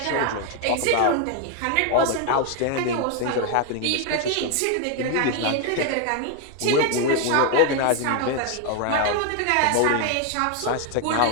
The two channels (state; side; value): different; both; correlation 0.01